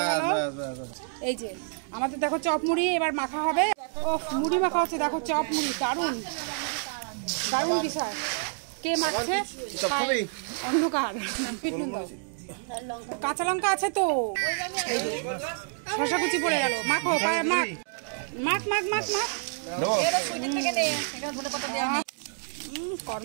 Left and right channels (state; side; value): silent; left; 59 dB below the other